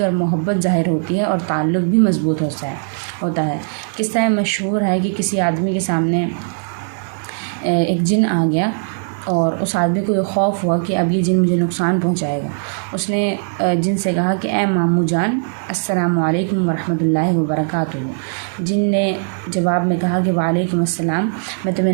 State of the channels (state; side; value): silent; left; digital silence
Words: और मोहब्बत ज़ाहिर होती है, और ताल्लुक़ भी मज़बूत होता है। किस्सा मशहूर है कि किसी आदमी के सामने एक जिन आ गया, और उस आदमी को ये खौफ हुआ कि अब ये जिन मुझे नुकसान पहुंचाएगा। उसने जिन से कहा कि ए मामू जान, अस्सलामु अलैकुम व रहमतुल्लाहि व बरकातुहू। जिन ने जवाब में कहा कि वालेकुम अस्सलाम, मैं तुम्हें